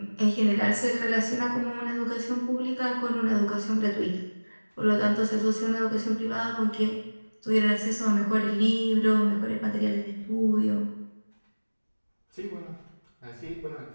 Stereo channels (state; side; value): inverted; both; correlation -1.00